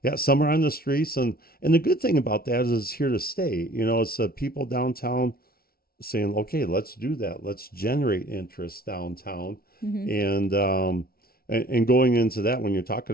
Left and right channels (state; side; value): late; right; 0.44 ms